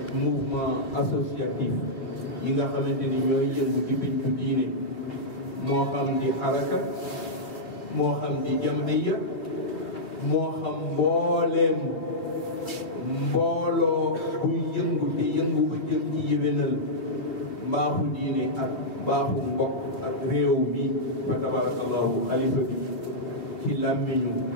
mouvement associatif yi nga xamante ni ñooy yëngu ci pincu diine moo xam di xaraka moo xam di jamhiya moo xam mbooleem mbooloo buy yëngu te yëngu ba jëm ci yéwénal mbaaxu diine ak mbaaxu mbokk ak réew mi fa tabarakallahu xalifa bi ci làmmiñu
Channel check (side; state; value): right; late; 3.5 ms